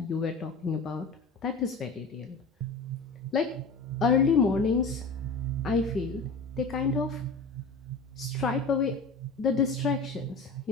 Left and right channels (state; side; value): quieter; right; 3.6 dB